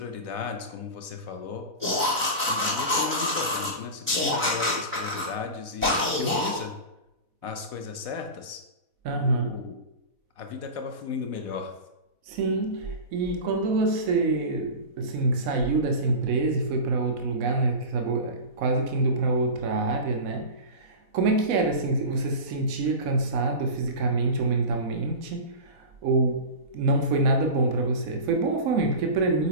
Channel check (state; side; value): late; left; 4.1 ms